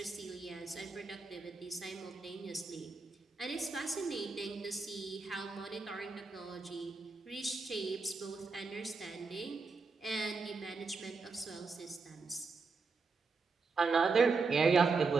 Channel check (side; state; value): left; quieter; 4.3 dB